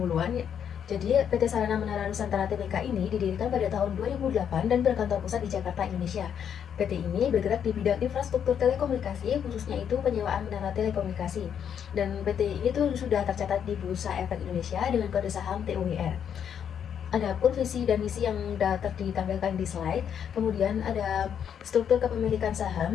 Jadi PT Sarana Menara Nusantara Tbk ini didirikan pada tahun 2008 dan berkantor pusat di Jakarta, Indonesia. PT ini bergerak di bidang infrastruktur telekomunikasi, khususnya itu penyewaan menara telekomunikasi. Dan PT ini tuh sudah tercatat di Bursa Efek Indonesia dengan kode saham TUWR. Adapun visi dan misi yang ditampilkan di slide. Kemudian ada struktur kepemilikan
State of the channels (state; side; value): quieter; right; 8.4 dB